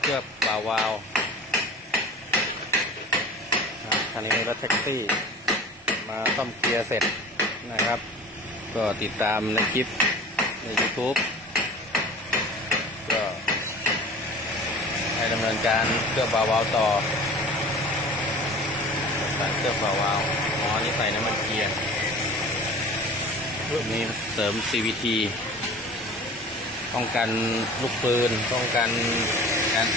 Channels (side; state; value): both; normal; correlation 0.41